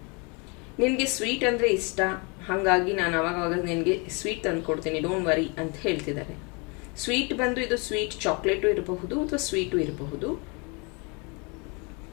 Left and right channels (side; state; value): right; quieter; 31.4 dB